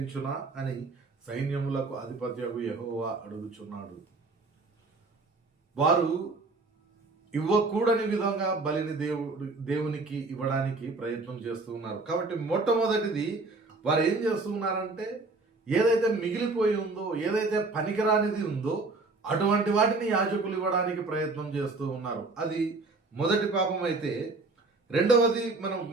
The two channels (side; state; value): left; quieter; 3.5 dB